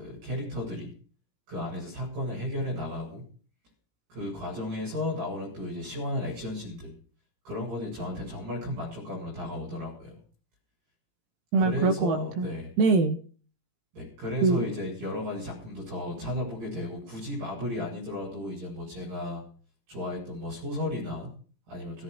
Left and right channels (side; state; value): left; late; 17 ms